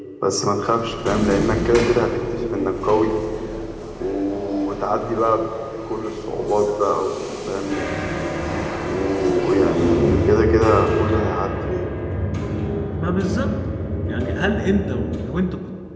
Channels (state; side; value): identical; both; correlation 1.00